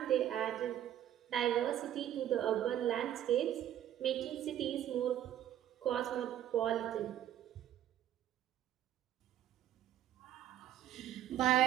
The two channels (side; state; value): left; quieter; 11.5 dB